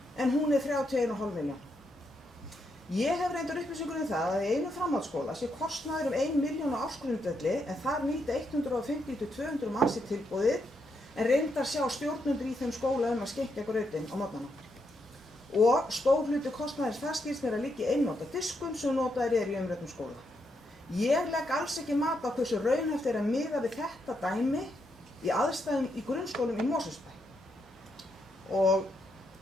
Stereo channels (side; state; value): both; normal; correlation 0.80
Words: en hún 31,5 milljón. Ég hef reyndar upplýsingur það að í einu framhaldsskóla sé kostnaður 1 milljón á ársgrundvelli, en þar nýta 150 til 200 manns í tilboðið, en reyndar sjá stjórnendur í þeim skóla að skenkja grautinn á morgnana. Og stór hluti kostnaðins þar skilst mér að liggja í einnota diskum sem notaðir í umræddum skóla. Ég legg alls ekki mat á hversu raunhæft að miða við þetta dæmi í aðstæðum í grunnskólum í Mosfellsbæ. Og